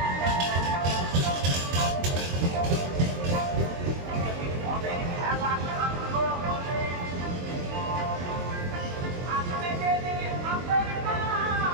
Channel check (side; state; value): left; late; 23 ms